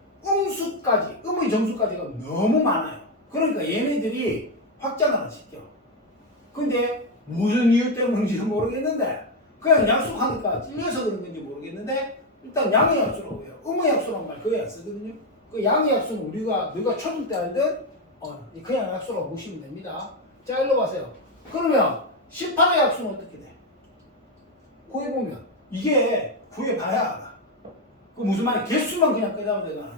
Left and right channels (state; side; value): normal; both; correlation 0.07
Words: 음수까지, 음의 정수까지가 너무 많아요. 그러니까 얘네들이 확장을 안 시켜. 근데 무슨 이유 때문인지 모르겠는데 그냥 약속하니까 찔려서 그런 건지 모르겠는데 일단 양의 약수라고 해요. 음의 약수란 말 거의 안 쓰거든요. 그 양의 약수는 우리가 너가 초등 때 알던 그냥 약수라고 보시면 됩니다. 자, 일로 가세요. 그러면 18의 약수는 어떻게 돼? 구해보면 이게 구해봐야 알아. 그 무슨 말이야? 개수만 그냥 끄자면